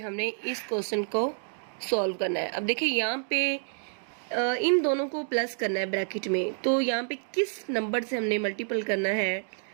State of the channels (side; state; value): left; silent; 59 dB below the other